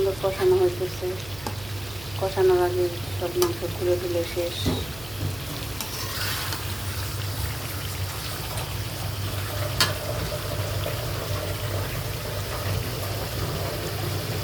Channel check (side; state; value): right; noise; hum, 15 dB below the sound